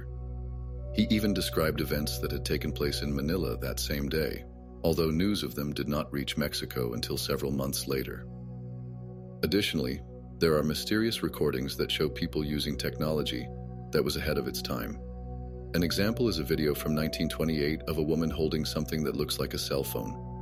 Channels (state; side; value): identical; both; correlation 1.00